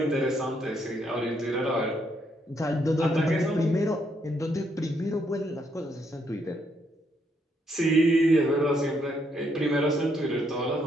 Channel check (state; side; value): normal; both; correlation 0.74